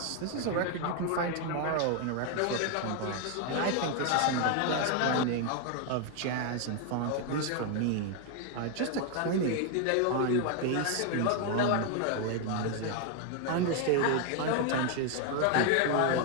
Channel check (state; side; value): different; both; correlation 0.01